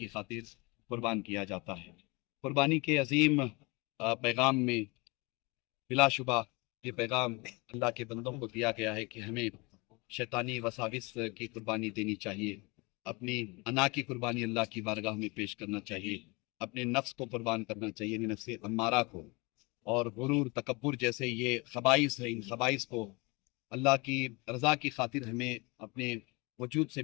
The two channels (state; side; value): quieter; right; 26.9 dB